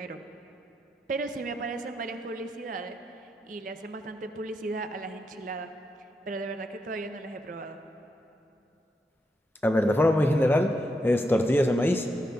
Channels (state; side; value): normal; both; correlation 0.83